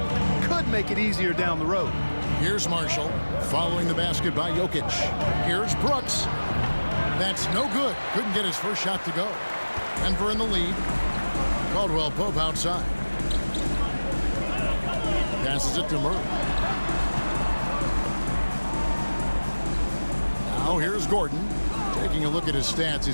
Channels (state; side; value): inverted; both; correlation -1.00